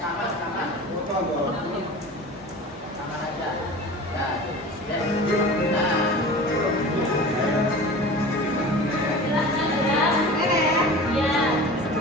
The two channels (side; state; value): both; normal; correlation 0.37